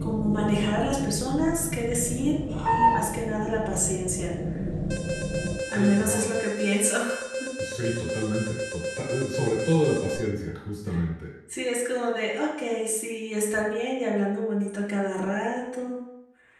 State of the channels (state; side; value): identical; both; correlation 1.00